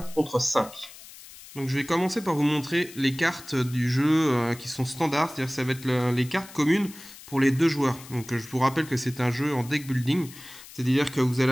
contre 5. Donc je vais commencer par vous montrer les cartes du jeu qui sont standards, c'est-à-dire que ça va être les cartes communes pour les deux joueurs. Donc je vous rappelle que c'est un jeu en deck building, c'est-à-dire que vous allez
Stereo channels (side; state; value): left; noise; hiss, 18 dB below the sound